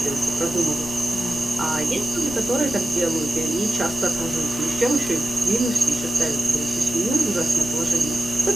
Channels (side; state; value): both; normal; correlation 0.92